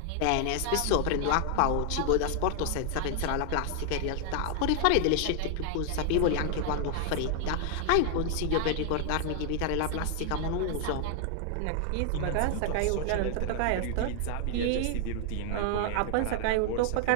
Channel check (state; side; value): different; both; correlation 0.00